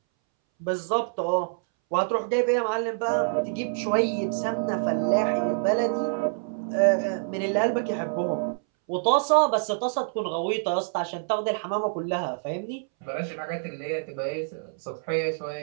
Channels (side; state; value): left; silent; 61 dB below the other